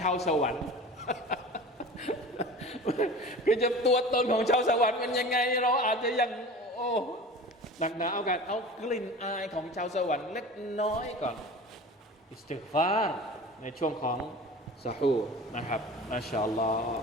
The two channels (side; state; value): both; normal; correlation 0.37